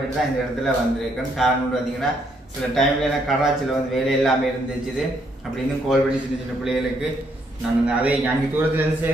தான் இந்த இடத்துல வந்திருக்கேன். காரணம் பார்த்தீங்கன்னா சில டைம்ல எனக்கு கராச்சியில் வந்து வேலை எல்லாமே இருந்துச்சுது. அப்படின்னு கோல் பண்ணி சின்ன சின்ன பிள்ளைகளுக்கு நாங்கள் அதை அங்கே தூரத்துலேருந்து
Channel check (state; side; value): normal; both; correlation 0.72